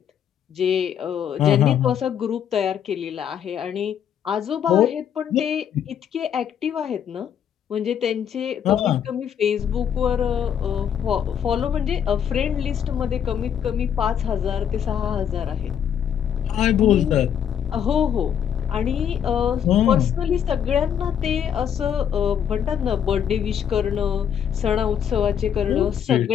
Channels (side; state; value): right; quieter; 8.8 dB